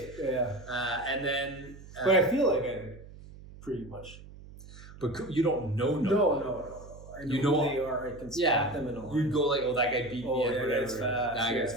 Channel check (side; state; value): right; noise; hum, 17 dB below the sound